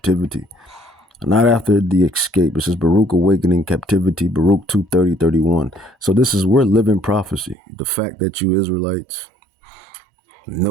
Not after the escape. It says Baruch awakened in captivity, Baruch 2:30-31. So we're living prophecy. The fact that you Israelites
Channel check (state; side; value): drops out; left; at 7.6 s